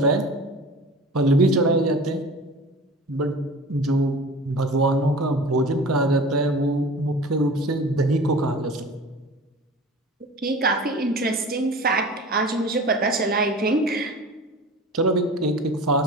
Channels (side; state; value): both; normal; correlation 0.38